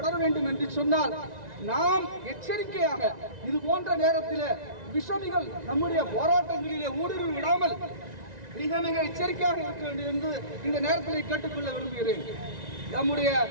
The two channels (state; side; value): late; left; 1.9 ms